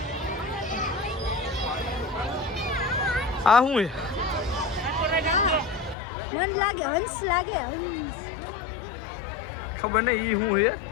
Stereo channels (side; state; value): right; drops out; at 6.0 s